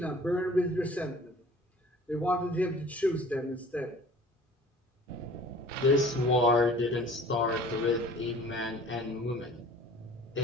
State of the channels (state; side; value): normal; both; correlation 0.48